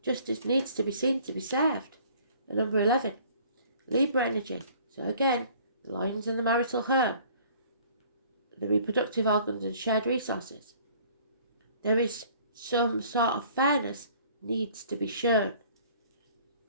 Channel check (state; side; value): inverted; both; correlation -0.54